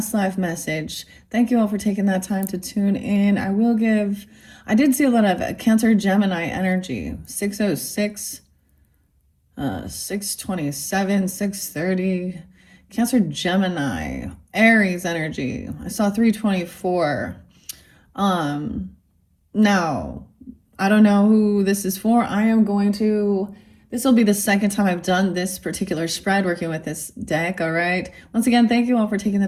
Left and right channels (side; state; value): both; identical; correlation 1.00